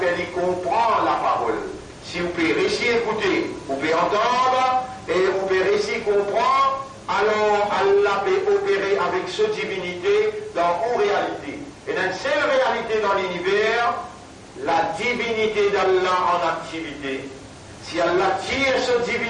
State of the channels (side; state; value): both; identical; correlation 1.00